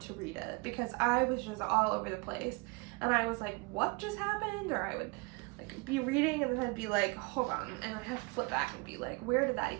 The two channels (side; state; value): left; quieter; 27.8 dB